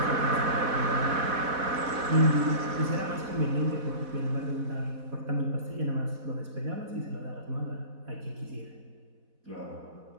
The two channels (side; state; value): left; late; 4.1 ms